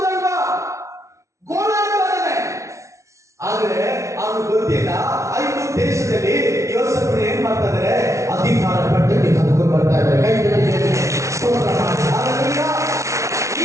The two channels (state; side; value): late; left; 0.14 ms